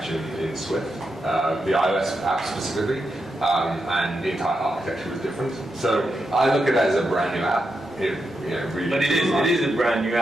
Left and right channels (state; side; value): normal; both; correlation 0.86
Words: in Swift, the iOS app specifically, and the entire architecture was different. So I look at it as a brand new app. Really. But it is a brand new